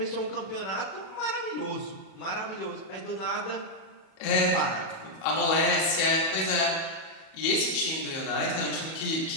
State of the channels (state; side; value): late; right; 37 ms